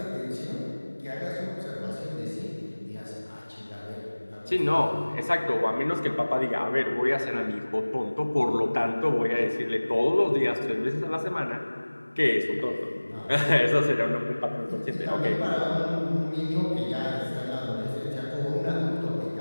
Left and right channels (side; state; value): both; inverted; correlation -1.00